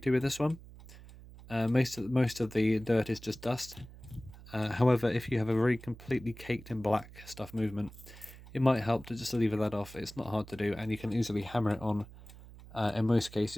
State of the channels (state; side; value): noise; right; hum, 18 dB below the sound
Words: to with this one. Most of the dirt is just dust. However, if you have a very completely caked in black stuff movement, it might help to just leave that off. It's not hard to do, and you can easily hammer it on in most